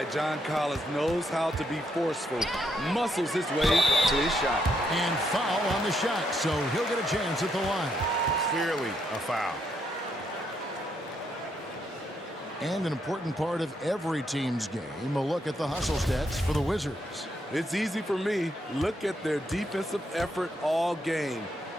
John Collins knows how to be forceful. Muscles his way to his shot. And foul on the shot, so he'll get a chance at the line. Clearly a foul. And an important part of every team's game, a look at the hustle stats for the Wizards. It's easy for me. Look at their defensive effort all game.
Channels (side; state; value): both; normal; correlation 0.76